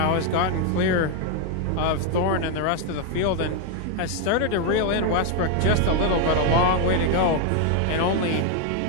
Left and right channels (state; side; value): different; both; correlation 0.01